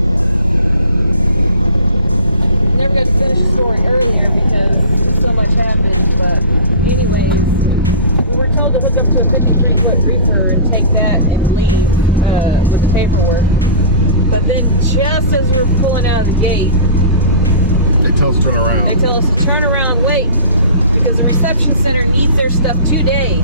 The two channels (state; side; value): inverted; both; correlation -0.38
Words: Never got to finish the story earlier because so much happened, but anyways, we were told to hook up to a 53-foot reefer and take that and leave with the paperwork. But then just as we were pulling out of the gate, they tell us to turn around. They tell us to turn around, wait, because the reception center needs their stuff today.